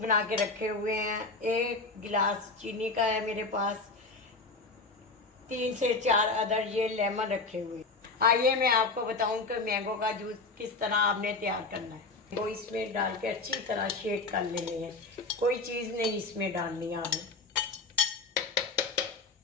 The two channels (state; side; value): quieter; right; 3.7 dB